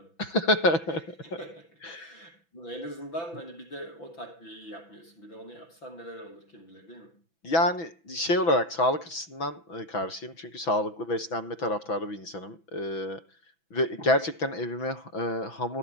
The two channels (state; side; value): late; right; 6.0 ms